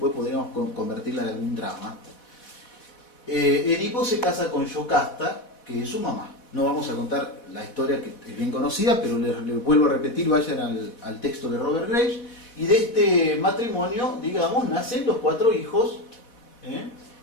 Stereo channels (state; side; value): late; right; 4.1 ms